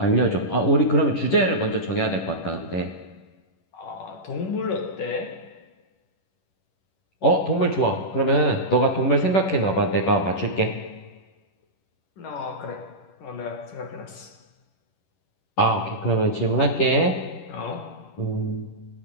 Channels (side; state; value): right; late; 11 ms